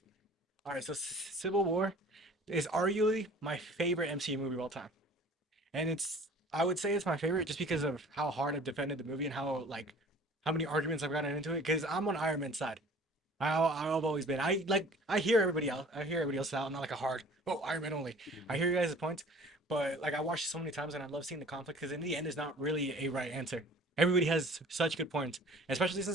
right, so Civil War is arguably my favorite MCU movie of all time, and I would say it's my favorite just because of how hard I've defended the movie and how many arguments I've gotten into it. Because I'm on Iron Man's side. I've always been. I hear everybody else. I hear everybody else out. I'm not like a hard Iron Man only. I hear you guys' points, but like I watched it so many times and I love seeing the conflict because in the end, there's not really a right answer. Everybody has such good points, especially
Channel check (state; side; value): normal; both; correlation 0.49